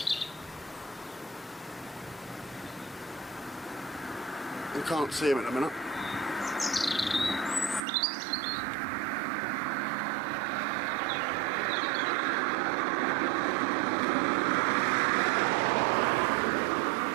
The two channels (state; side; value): drops out; left; at 7.9 s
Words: You can't see him at the minute.